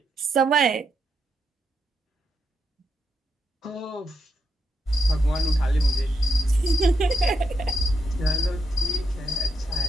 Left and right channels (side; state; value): both; normal; correlation 0.81